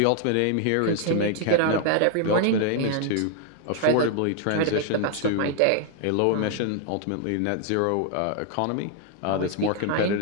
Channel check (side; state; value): both; different; correlation 0.00